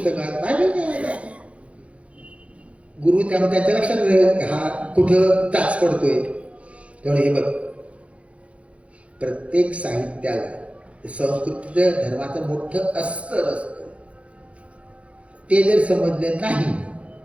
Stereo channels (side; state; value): left; late; 0.063 ms